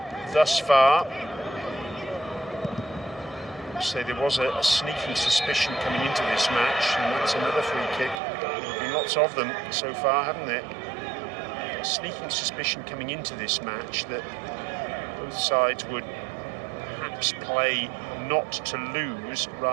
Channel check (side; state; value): left; drops out; at 8.2 s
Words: thus far. So there was a sneaking suspicion coming into this match, and that's another free kick. There have been lots of them so far, haven't there? A sneaking suspicion coming into this match that both sides would perhaps play not to lose